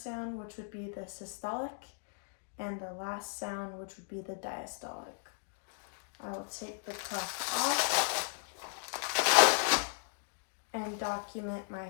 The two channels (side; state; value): right; silent; digital silence